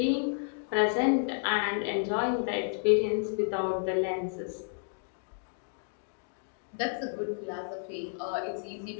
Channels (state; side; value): silent; right; digital silence